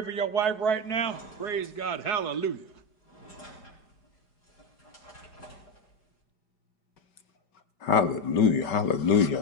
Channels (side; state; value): right; late; 5.2 ms